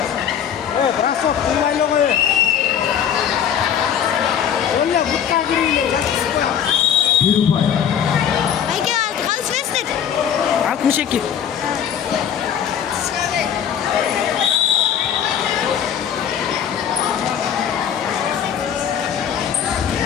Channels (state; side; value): quieter; right; 8.8 dB